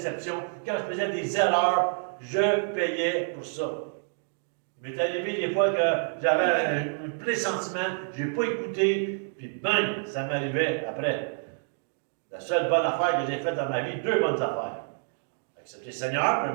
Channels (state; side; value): silent; left; 59 dB below the other